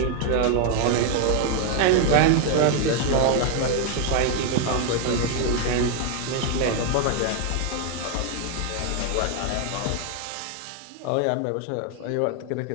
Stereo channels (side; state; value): both; different; correlation 0.01